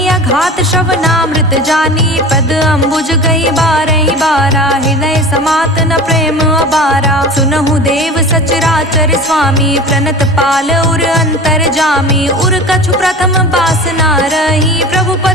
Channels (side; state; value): both; normal; correlation 0.35